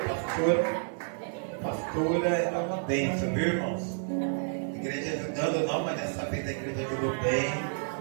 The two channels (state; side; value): silent; left; digital silence